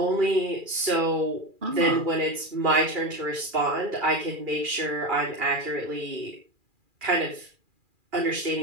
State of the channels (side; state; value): left; late; 2.4 ms